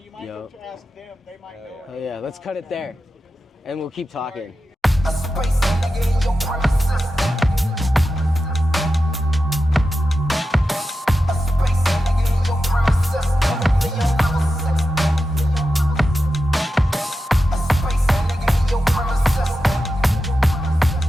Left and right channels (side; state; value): both; normal; correlation 0.91